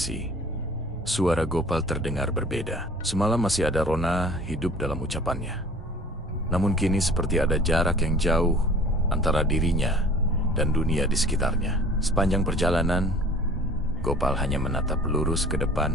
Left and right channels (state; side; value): normal; both; correlation 0.47